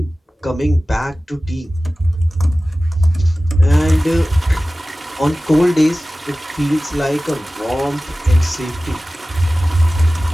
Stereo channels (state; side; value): normal; both; correlation 0.97